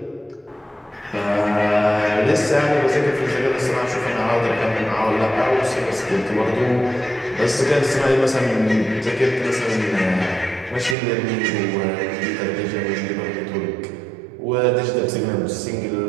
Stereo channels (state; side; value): drops out; left; at 11.0 s